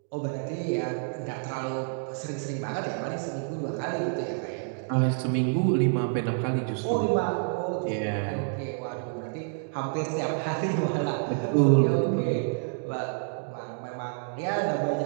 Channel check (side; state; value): left; silent; digital silence